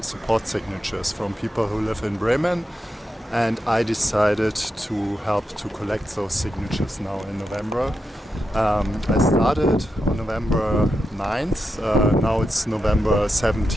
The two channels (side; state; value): both; normal; correlation 0.87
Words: support signatures from people who live in Bremen. And I decided to help to collect those signatures now in November. I started on November 9th, now it's November